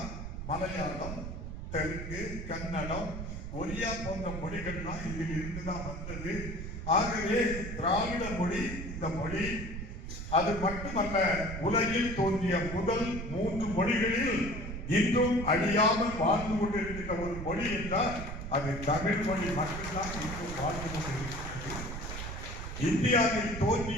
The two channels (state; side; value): noise; right; rumble, 7 dB below the sound